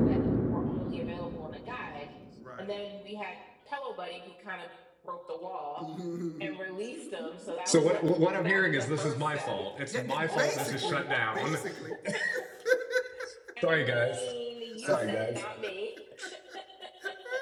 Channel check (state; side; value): identical; both; correlation 1.00